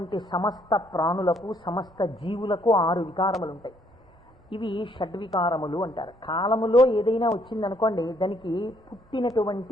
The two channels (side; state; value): both; normal; correlation 0.67